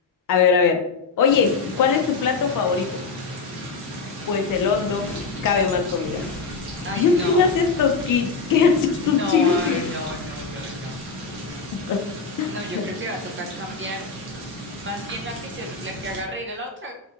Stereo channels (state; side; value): quieter; right; 4.8 dB